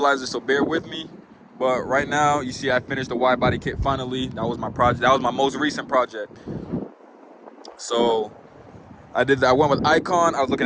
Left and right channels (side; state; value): both; identical; correlation 1.00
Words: so bear with me. But right now, you see I finished the Widebody Kit finally. That was my project. That was my most recent project. So I did that. I went with Icon. I was looking